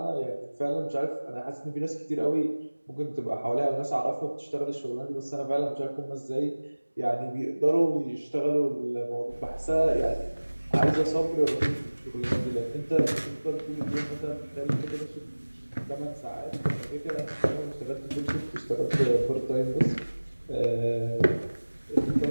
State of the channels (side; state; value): both; inverted; correlation -1.00